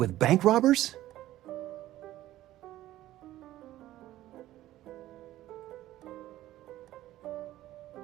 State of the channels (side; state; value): left; quieter; 14.7 dB